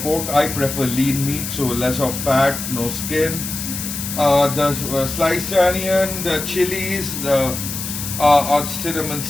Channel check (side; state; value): left; noise; hiss, 6 dB below the sound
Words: pork. I prefer lean meat, so less of fat, no skin. The sliced onion, the chilies, the cinnamon